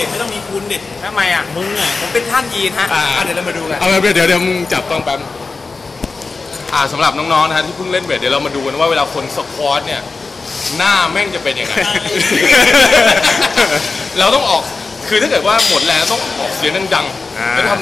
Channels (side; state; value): right; quieter; 4.1 dB